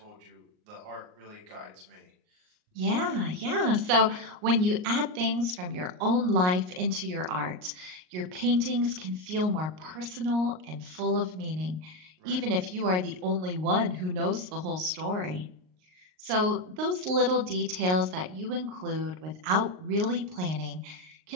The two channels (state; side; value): late; left; 38 ms